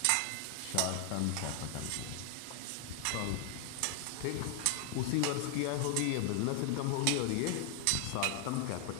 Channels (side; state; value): both; different; correlation 0.00